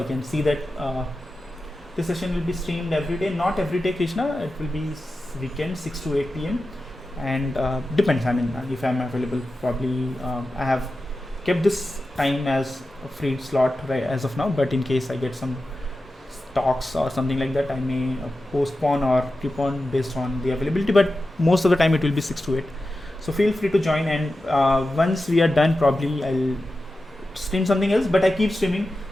can see that this session will be streamed every day. Not every day, Krishna, it will be weekend 6 to 8 p.m. and depends. I mean, if I'm available, probably I have kept this time as a free slot right as of now, but in case I get some talks or something like that, I may postpone or keep on based on the availability, but most of the time it will be 6 to 8. So feel free to join, and once we are done, probably I'll stream something else, but I keep streaming.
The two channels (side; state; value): both; normal; correlation 0.93